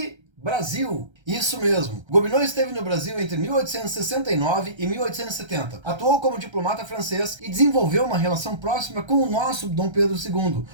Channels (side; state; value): left; late; 1.3 ms